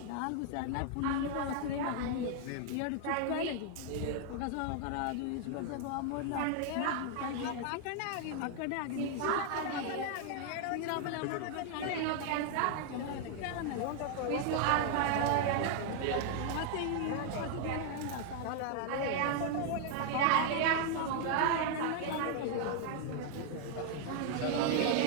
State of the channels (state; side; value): different; both; correlation 0.00